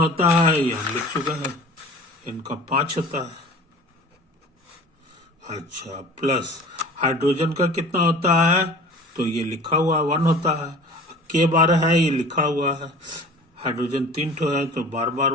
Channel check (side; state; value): both; normal; correlation 0.42